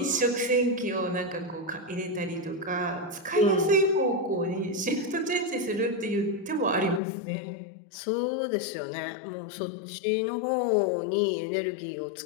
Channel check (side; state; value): right; drops out; at 7.0 s